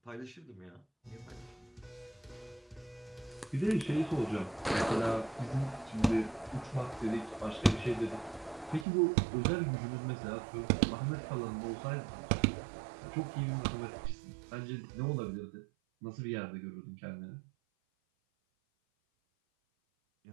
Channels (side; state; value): left; drops out; at 8.8 s